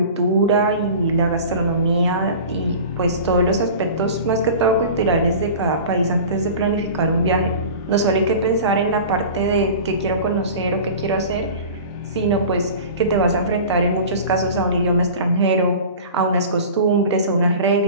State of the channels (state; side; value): inverted; both; correlation -0.37